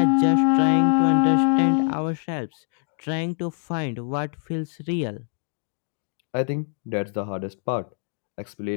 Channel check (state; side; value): silent; right; digital silence